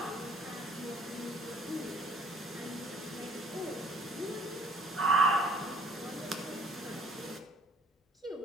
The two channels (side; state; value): both; normal; correlation 0.56